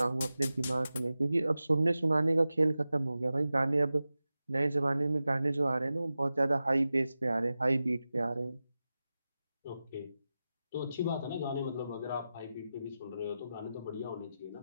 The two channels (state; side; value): inverted; both; correlation -0.94